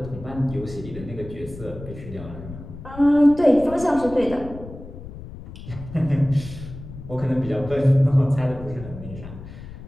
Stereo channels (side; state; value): left; noise; rumble, 13 dB below the sound